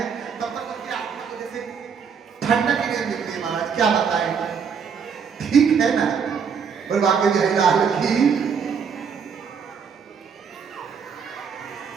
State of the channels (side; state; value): left; quieter; 6.5 dB